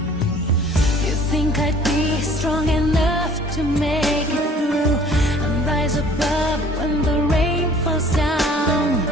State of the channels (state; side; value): normal; both; correlation 0.52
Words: You think I'd be strong enough to make it through and rise above when the rain falls down,